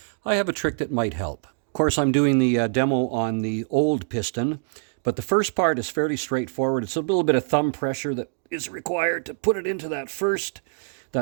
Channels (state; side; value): silent; left; digital silence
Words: have a trick that might help. Of course, I'm doing the demo on the old piston, but the first part is fairly straightforward. It's a little bit of thumb pressure that is required to put it into that first